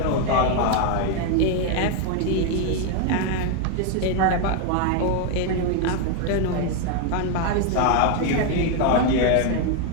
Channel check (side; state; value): both; different; correlation 0.01